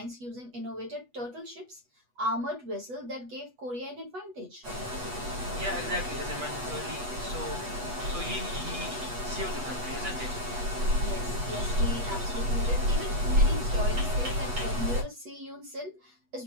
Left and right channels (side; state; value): left; late; 8.2 ms